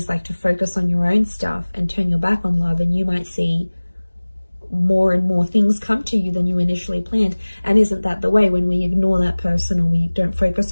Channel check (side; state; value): both; inverted; correlation -1.00